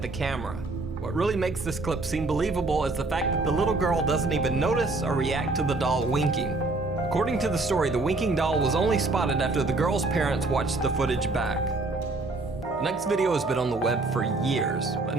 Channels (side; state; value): left; quieter; 3.3 dB